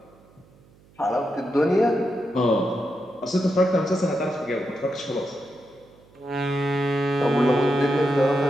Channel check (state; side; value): noise; right; hum, 28 dB below the sound